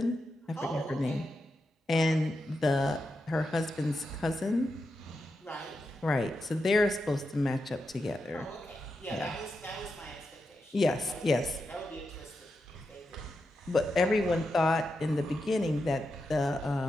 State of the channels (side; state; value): both; normal; correlation 0.87